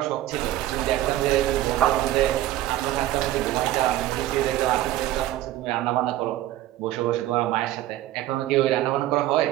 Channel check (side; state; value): left; quieter; 14.4 dB